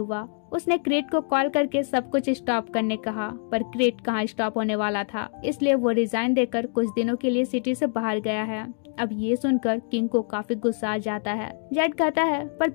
उसने क्रेट को कॉल करके सब कुछ स्टॉप करने कहा, पर क्रेट कहाँ स्टॉप होने वाला था, इसलिए वो रिजाइन देकर कुछ दिनों के लिए सिटी से बाहर गया है। अब ये सुनकर किंग को काफी गुस्सा आ जाता है। जेड कहता है, पर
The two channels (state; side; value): silent; right; 56 dB below the other